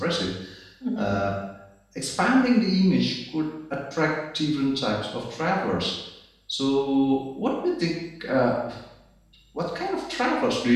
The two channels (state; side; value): identical; both; correlation 1.00